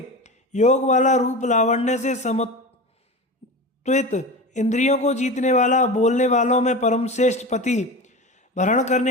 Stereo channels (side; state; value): both; normal; correlation 0.27